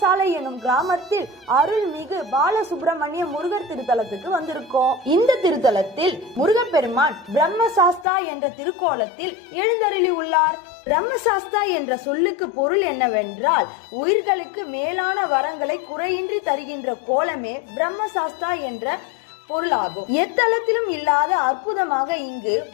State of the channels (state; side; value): drops out; right; at 8.1 s